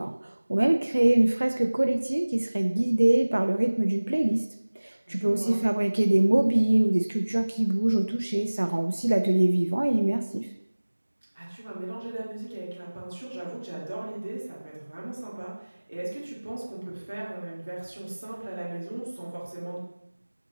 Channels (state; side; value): inverted; both; correlation -1.00